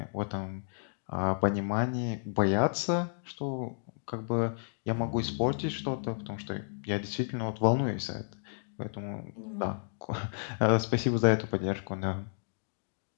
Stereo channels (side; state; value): right; silent; digital silence